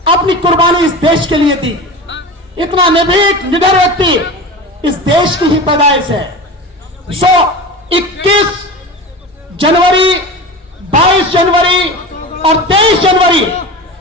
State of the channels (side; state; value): both; normal; correlation 0.30